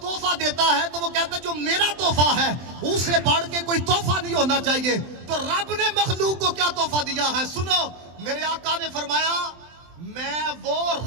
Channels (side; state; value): left; late; 23 ms